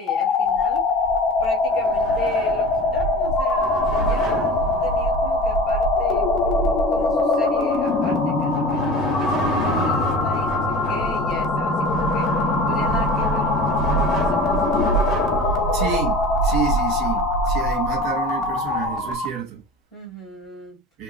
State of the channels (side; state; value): both; normal; correlation 0.37